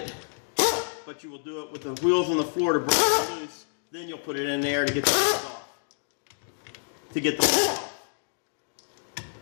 But you will do it with the wheels on the floor to break it loose. Then you'll put it in there to get the wheels off. To get the wheels off.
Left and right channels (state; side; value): silent; right; digital silence